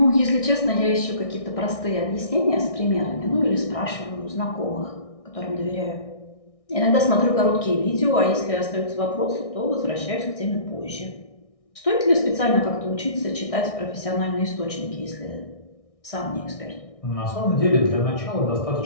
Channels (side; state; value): right; late; 1.6 ms